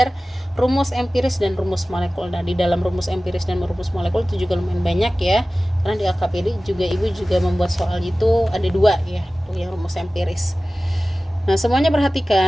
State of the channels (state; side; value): normal; both; correlation 0.97